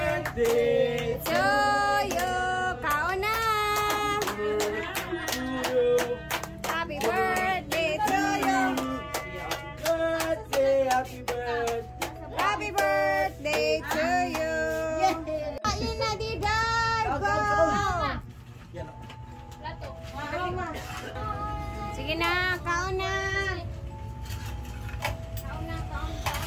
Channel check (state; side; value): identical; both; correlation 1.00